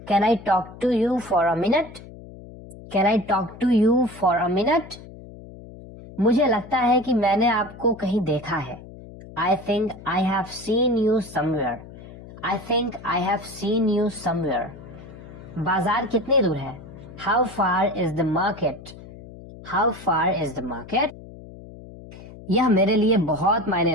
Can I talk to you for a minute? Can I talk to you for a minute? मुझे लगता है कि मैंने आपको कहीं देखा है। I think I have seen you somewhere. I think I have seen you somewhere. बाजार कितनी दूर है? How far is the market? How far is the market? यह मेरे लिए बहुत मायने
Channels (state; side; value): noise; left; hum, 17 dB below the sound